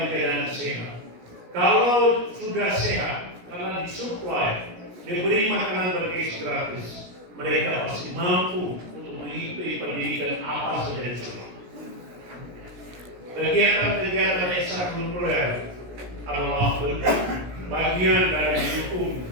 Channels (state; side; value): late; left; 17 ms